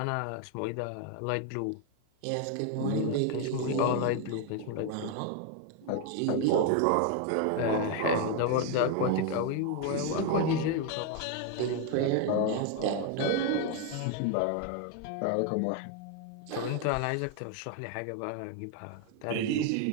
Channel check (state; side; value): different; both; correlation 0.01